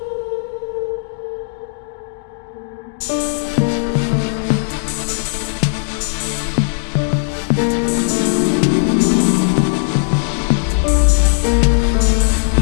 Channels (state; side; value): silent; right; digital silence